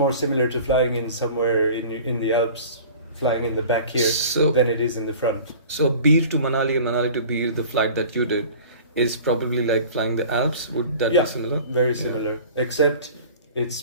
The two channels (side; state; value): both; inverted; correlation -0.43